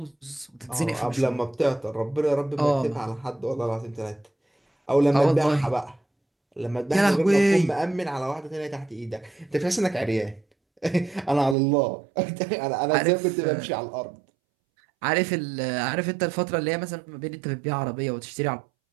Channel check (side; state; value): left; drops out; at 11.6 s